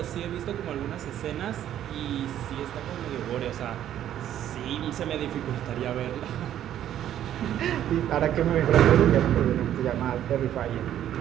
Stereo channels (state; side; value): quieter; left; 11.2 dB